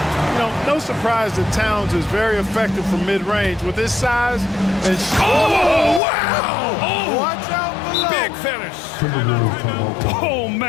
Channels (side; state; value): right; drops out; at 6.0 s